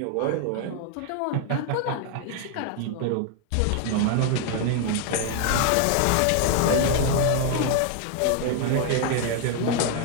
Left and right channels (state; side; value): different; both; correlation 0.00